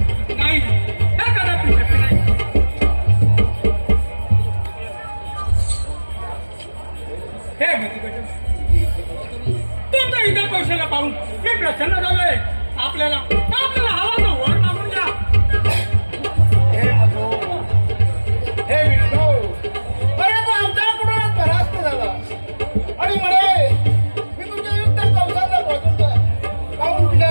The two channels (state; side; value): inverted; both; correlation -1.00